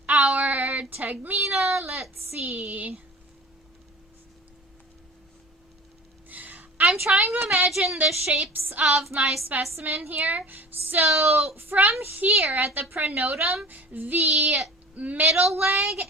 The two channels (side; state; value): both; normal; correlation 0.39